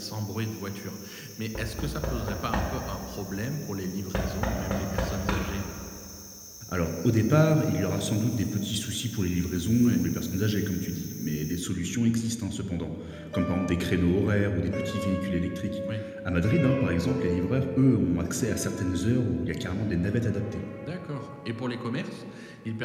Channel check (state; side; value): identical; both; correlation 1.00